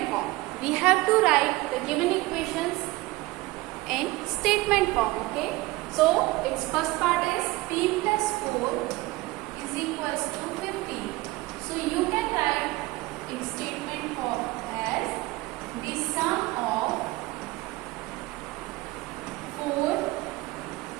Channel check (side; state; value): left; quieter; 20.3 dB